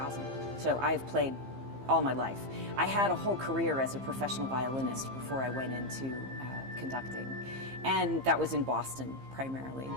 so I've played all my life. I had a whole career as a professional violinist before I went into conducting, and that was in Boston primarily.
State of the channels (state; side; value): late; left; 15 ms